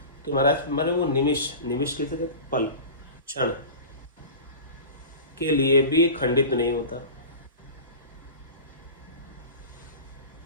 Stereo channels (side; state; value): both; inverted; correlation -0.34